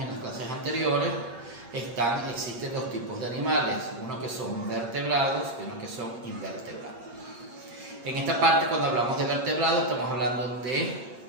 las clases anteriores, existen dos tipos de animales, unos que son vertebrados y unos que son invertebrados. En esta parte, cuando hablamos de vertebrados, estamos hablando de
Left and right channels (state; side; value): late; left; 8.6 ms